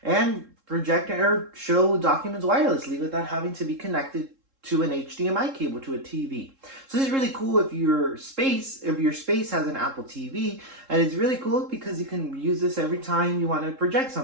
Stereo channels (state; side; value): late; left; 3.7 ms